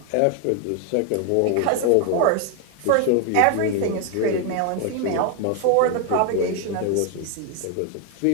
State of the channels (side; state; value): both; different; correlation 0.01